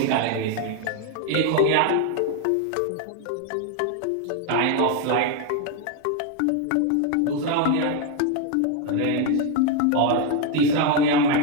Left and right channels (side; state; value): both; different; correlation 0.01